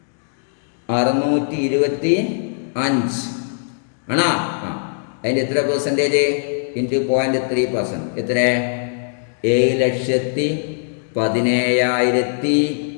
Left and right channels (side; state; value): right; silent; digital silence